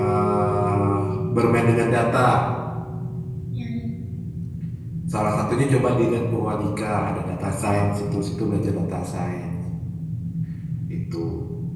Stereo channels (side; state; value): both; identical; correlation 1.00